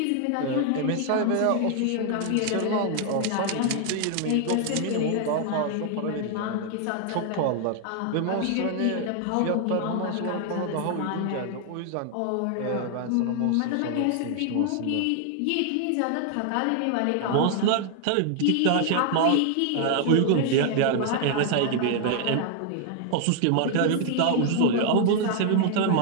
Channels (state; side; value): different; both; correlation 0.00